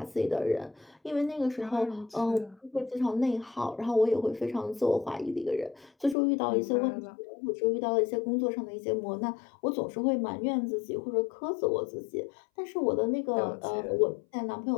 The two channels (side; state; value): right; drops out; at 6.2 s